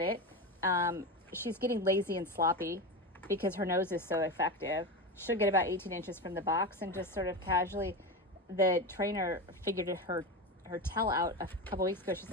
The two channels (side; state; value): both; normal; correlation 0.20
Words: She's getting lazy and sloppy because her nose is so effective. She'll get about 18 inches from the box and just sort of casually, the trainer figured her tail out a couple weeks ago. She's